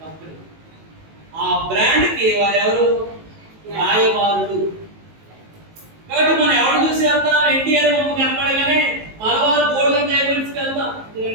కంపెనీ. ఆ బ్రాండ్ కి వారు ఎవరు? రాయబారులు. కాబట్టి మనం ఎవరు చూసి వెళ్తాం? ఎన్టీఆర్ బొమ్మ కనపడగానే మలబార్ గోల్డెన్ డైమండ్స్కి వెళ్తాం,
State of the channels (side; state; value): left; late; 19 ms